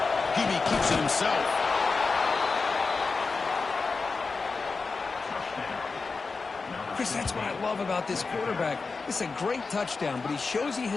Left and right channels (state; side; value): quieter; right; 4.3 dB